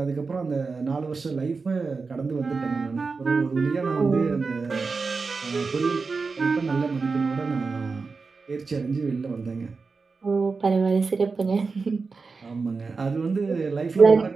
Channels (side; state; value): left; quieter; 4.5 dB